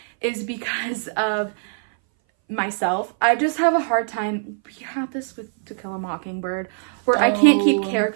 is because of myself. I just have a hard time. We have this with To Kill a Mockingbird where I can't keep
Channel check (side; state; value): left; silent; 60 dB below the other